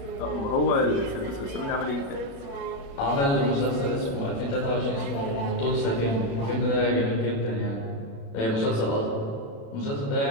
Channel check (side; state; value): right; late; 36 ms